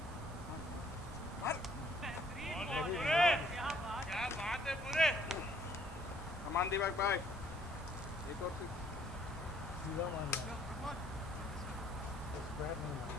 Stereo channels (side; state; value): both; normal; correlation 0.62